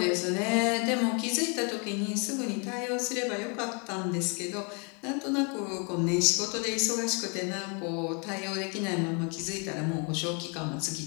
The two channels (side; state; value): right; quieter; 34.9 dB